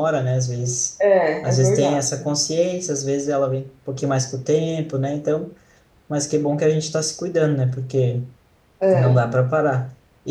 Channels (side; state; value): both; identical; correlation 1.00